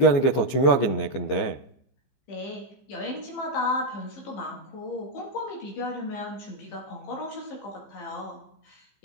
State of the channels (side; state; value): right; late; 15 ms